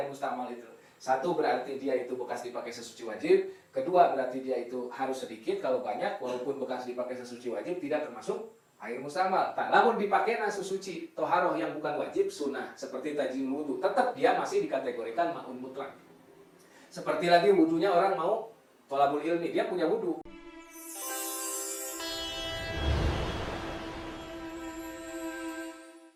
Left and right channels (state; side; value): identical; both; correlation 1.00